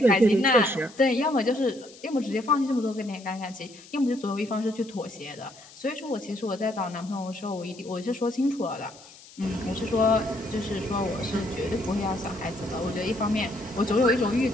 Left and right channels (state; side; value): noise; left; hiss, 21 dB below the sound